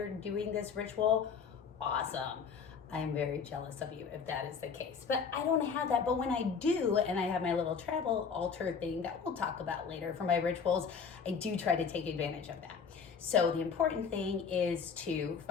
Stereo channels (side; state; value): right; quieter; 6.1 dB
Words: doing this ritual, awesome. I'm very jealous of you if that is the case. But I don't have that. But when I do, and I have my little travel altar thing that we'll talk about later for my rituals, I do try to take advantage of that. So the important thing is to